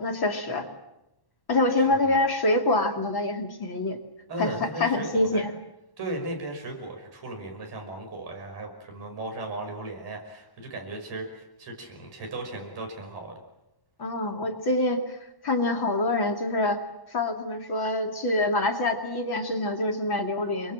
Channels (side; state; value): right; late; 1.1 ms